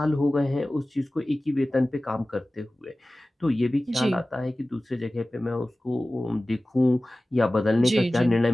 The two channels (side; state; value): both; normal; correlation 0.97